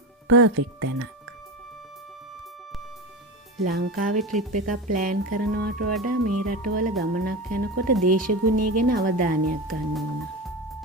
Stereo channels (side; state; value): both; normal; correlation 0.23